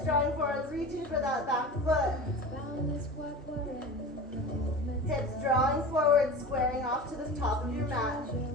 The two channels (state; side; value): normal; both; correlation 0.33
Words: drawing forward, reaching for that back foot. Hips drawing forward, squaring off to the top of your mat.